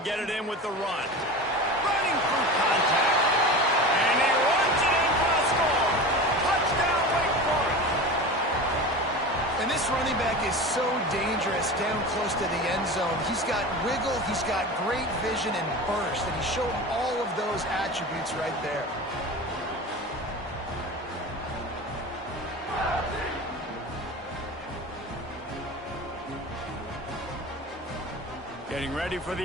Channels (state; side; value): normal; both; correlation 0.31